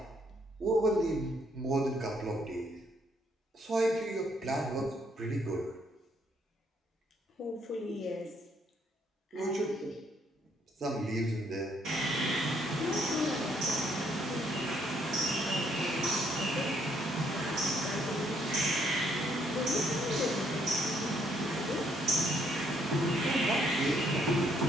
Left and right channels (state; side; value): normal; both; correlation 0.69